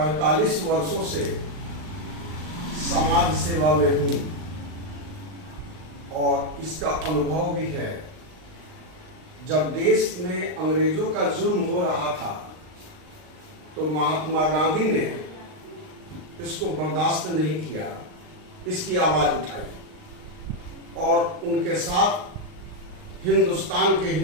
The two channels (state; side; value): late; left; 39 ms